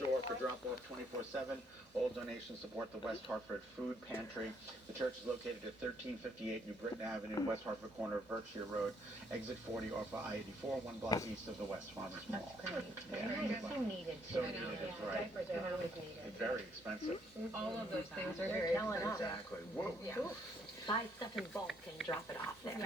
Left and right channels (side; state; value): both; normal; correlation 0.69